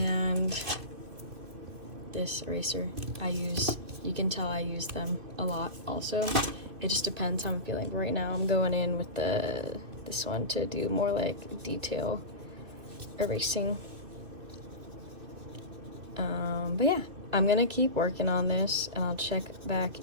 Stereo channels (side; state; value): left; late; 2.6 ms